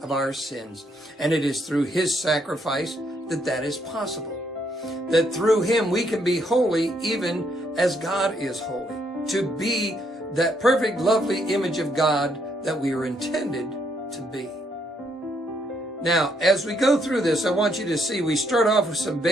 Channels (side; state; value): both; normal; correlation 0.73